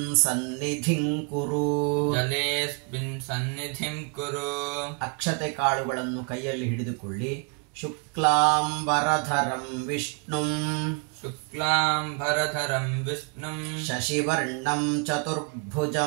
ಸನ್ನಿಧಿಂ ಕುರು ಜಲೇಸ್ಮಿನ್ ಸನ್ನಿಧಿಂ ಕುರು. ಅಕ್ಷತೆ ಕಾಳುಗಳನ್ನು ಕೈಯಲ್ಲಿ ಹಿಡಿದುಕೊಳ್ಳಿ. ಶುಕ್ಲಾಂಬರಧರಂ ವಿಷ್ಣುಂ ಶುಕ್ಲಾಂಬರಧರಂ ವಿಷ್ಣುಂ ಶಶಿವರ್ಣಂ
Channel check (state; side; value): quieter; left; 34.8 dB